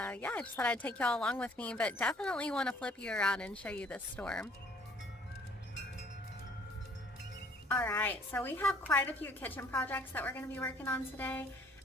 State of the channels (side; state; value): both; normal; correlation 0.58